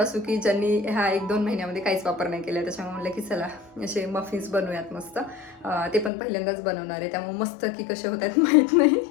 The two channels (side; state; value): right; drops out; at 6.1 s